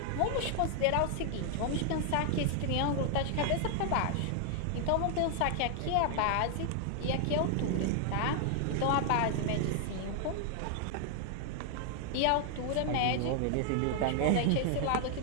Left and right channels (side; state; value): both; different; correlation 0.00